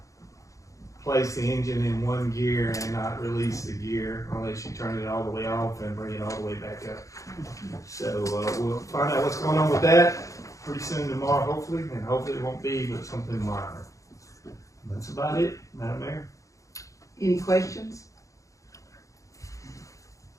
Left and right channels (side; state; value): right; late; 0.16 ms